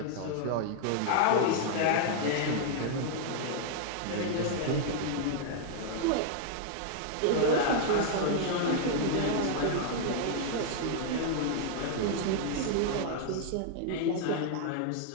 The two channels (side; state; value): both; different; correlation -0.01